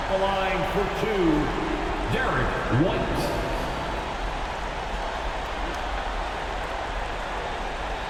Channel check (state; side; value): identical; both; correlation 1.00